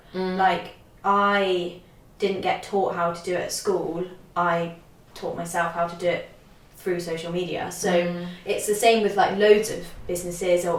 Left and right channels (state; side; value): identical; both; correlation 1.00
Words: Like I didn't get taught how to do it at school. I taught myself how to do it through social media. So it's the same with like loads of businesses,